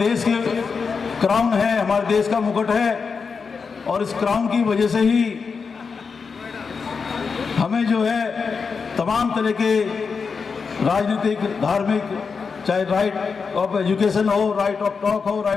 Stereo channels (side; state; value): right; quieter; 5.3 dB